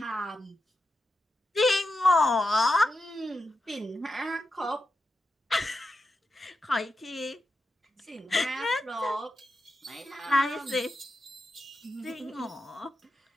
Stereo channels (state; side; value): normal; both; correlation 0.88